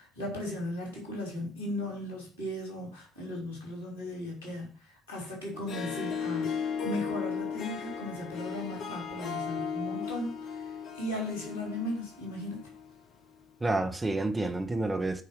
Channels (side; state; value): both; normal; correlation 0.64